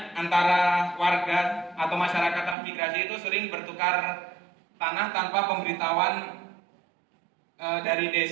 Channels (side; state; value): left; drops out; at 2.6 s